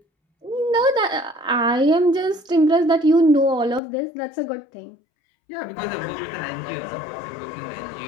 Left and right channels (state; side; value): drops out; right; at 3.8 s